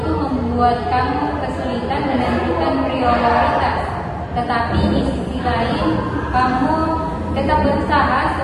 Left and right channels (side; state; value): both; identical; correlation 1.00